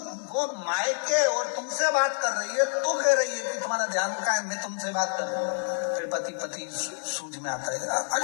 वो मायके और तुमसे बात कर रही है तो कह रही है कि तुम्हारा ध्यान कहाँ है, मैं तुमसे बात कर रही हूँ। फिर पति सूझ में आता है,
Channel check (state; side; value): silent; right; 60 dB below the other